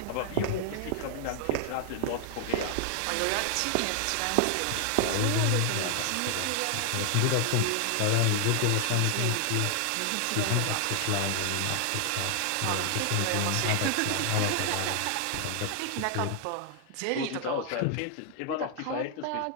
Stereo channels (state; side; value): different; both; correlation 0.00